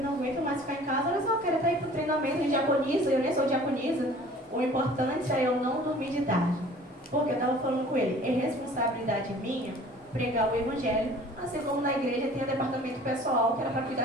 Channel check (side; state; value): both; normal; correlation 0.48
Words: não aguento mais ficar em casa, olha só, eu quero até ir para o treinamento de diaconisa, eu nem sou diaconisa. O importante é eu não dormir de tarde. Porque eu estava falando com ele, é responsabilidade minha pregar o evangelho, assim como na igreja tem o departamento pessoal que